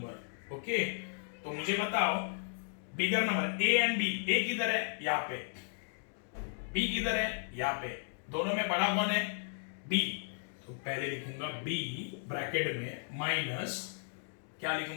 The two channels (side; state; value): right; silent; digital silence